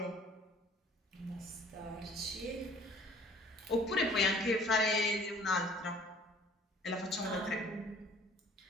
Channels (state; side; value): normal; both; correlation 0.53